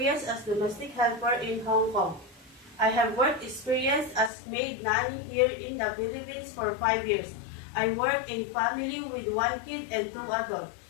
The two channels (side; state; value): right; drops out; at 4.3 s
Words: as domestic helper in Hong Kong. I have work experience as maid nanny here in the Philippines for 5 years. I work in family with one kid and 2 adults.